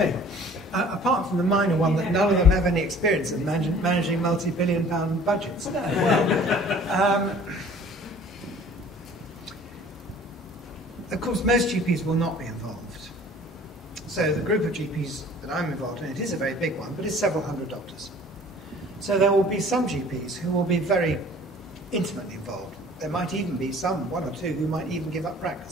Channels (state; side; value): normal; both; correlation 0.50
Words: Apart from the minor one that none of them have any experience of managing multi-billion-pound budgets. Of course, most GPs will not be involved. So the group of GPs that I'm involved in, it is a very big one, but it's several hundred doctors. So there will be some GPs who will be very intimately involved. There might even be some, 1 or 2, who might even give up